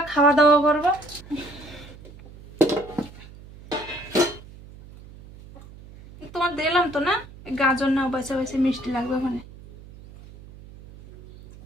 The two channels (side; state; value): right; noise; hum, 19 dB below the sound